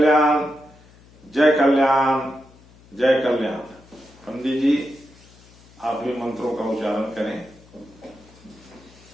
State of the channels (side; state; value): left; noise; hum, 26 dB below the sound